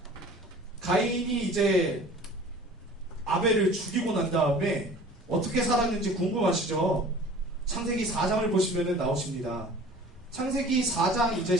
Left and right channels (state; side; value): normal; both; correlation 0.45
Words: 가인이 이제 아벨을 죽이고 난 다음에 어떻게 살았는지 궁금하시죠? 창세기 4장을 보시면 나오십니다. 창세기 4장 이제